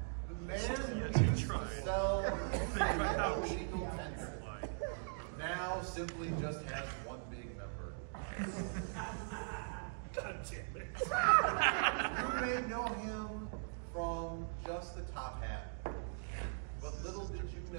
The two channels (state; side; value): silent; left; digital silence